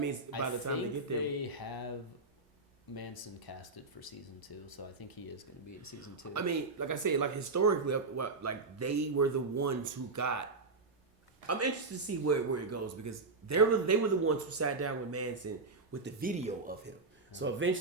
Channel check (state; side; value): quieter; left; 3.7 dB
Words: by the time they get there, they have Manson casted for season 2, so I think he is going to be in season 2. I mean, like I said, like historically, like they were the ones who got. I'm interested to see where it goes because they were the ones who sat down with Manson with the video of him. So